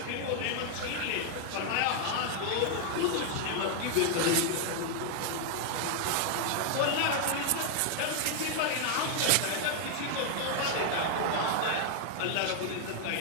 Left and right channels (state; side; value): different; both; correlation 0.00